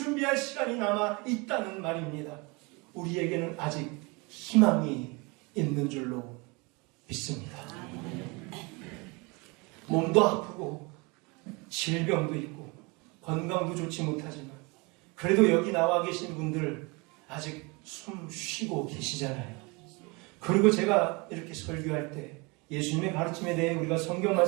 시간이 남아있다는 말입니다. 우리에게는 아직 희망이 있는 줄로 믿습니다. 몸도 아프고 질병도 있고 건강도 좋지 못하지만 그래도 여기 나와 계신 분들 아직 숨 쉬고 계시잖아요. 그리고 제가 이렇게 설교할 때 예수님의 가르침에 대해 우리가 성경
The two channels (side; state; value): left; quieter; 27.8 dB